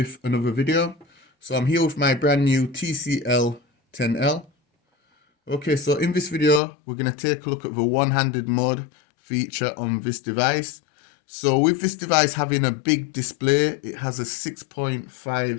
another video. So I'm here with my brand new TCL 10L. Okay, so in this video, we're going to take a look at the one-handed mode feature on this device. So with this device having a big display, it has a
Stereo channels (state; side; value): drops out; right; at 6.6 s